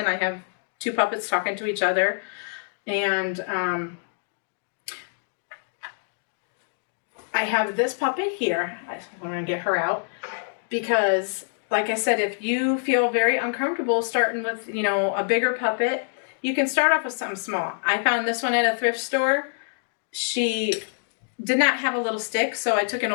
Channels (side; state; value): right; silent; digital silence